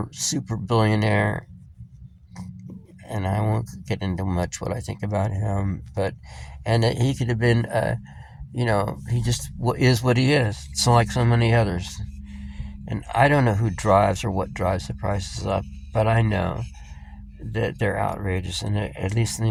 super billionaire, and I won't get into much what I think about him, and he could have been, he just is what he is. So like so many others, and I don't know who drives or what drives the prices up, but I know that they're outrageous, and at least in the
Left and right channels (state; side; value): identical; both; correlation 1.00